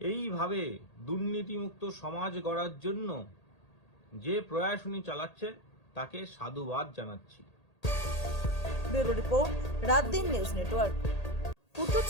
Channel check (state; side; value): late; right; 1.8 ms